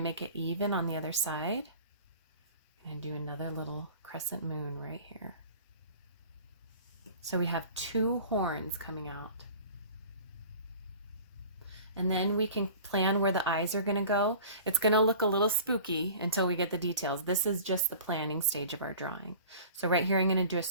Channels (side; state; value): both; inverted; correlation -0.43